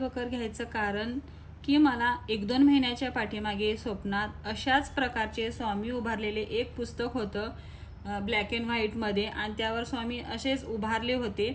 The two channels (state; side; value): identical; both; correlation 1.00